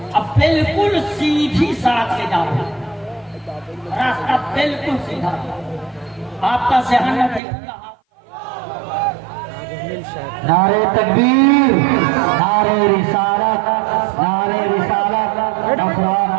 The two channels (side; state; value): left; drops out; at 7.4 s